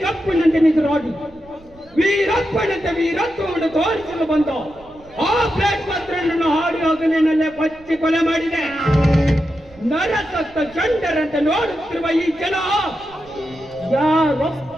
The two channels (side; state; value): right; noise; rumble, 25 dB below the sound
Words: ಕಪ್ಪನಂತೆ ನಿಜರಾಗಿ ವೀರಪ್ಪನಂತೆ ವೀರತ್ವವನ್ನು ತೋರಿಸಲು ಬಂದ ಆ ಪ್ಲೇಟ್ ಪತ್ರವನ್ನು ಹಾಡಿ ಹೋಗಲಿನಲ್ಲೇ ಕೊಚ್ಚಿ ಕೊಲೆ ಮಾಡಿದೆ. ನರಸತ್ತ ಚಂಡರಂತೆ ನೋಡುತ್ತಿರುವ ಈ ಜನ